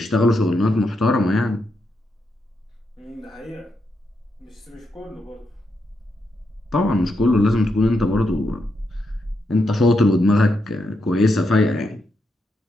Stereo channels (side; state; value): both; normal; correlation 0.82